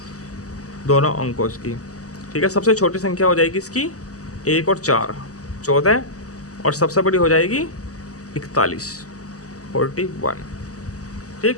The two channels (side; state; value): right; late; 0.66 ms